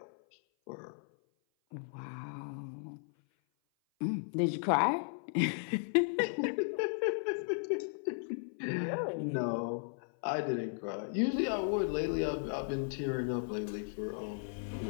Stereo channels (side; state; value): right; silent; 54 dB below the other